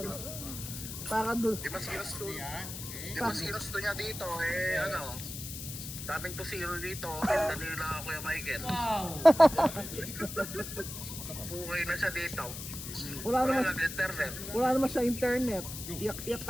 Para doon. Di mas ginusto, Yan. Okay. di mas ginusto niya dito, eh ano, daming tusiro dito, pinta nila Kuya Michael. Wow! Bukay na siya dito. Wala Wala naman, nang internet. wala naman siya internet. Iyak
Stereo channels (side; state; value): left; noise; hiss, 8 dB below the sound